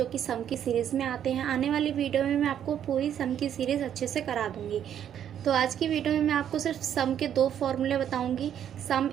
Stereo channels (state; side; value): quieter; left; 9.7 dB